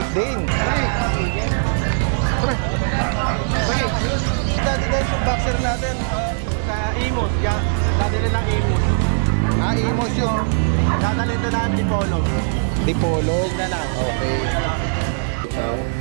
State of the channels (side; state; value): left; silent; 62 dB below the other